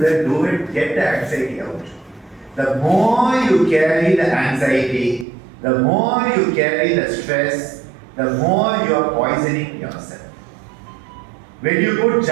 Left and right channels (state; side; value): drops out; left; at 5.2 s